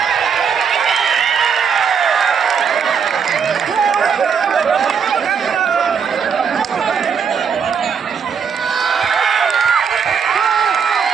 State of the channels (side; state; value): left; quieter; 6.6 dB